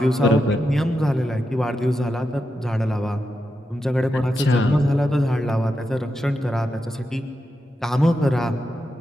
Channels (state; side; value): normal; both; correlation 0.87